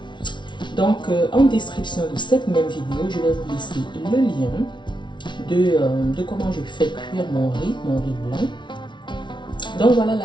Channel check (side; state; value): right; late; 0.23 ms